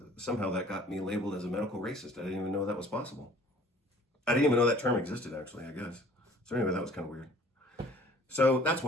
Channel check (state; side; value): normal; both; correlation 0.52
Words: somehow that got me labeled as a medical racist. I didn't even know that was possible. I didn't even know that term existed, actually, I guess. So anyway, that was kind of weird. So that's